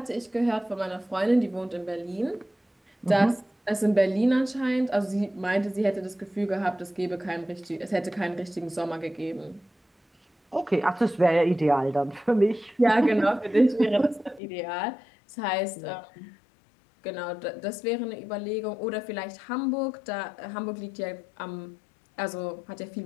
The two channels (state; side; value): drops out; right; at 14.4 s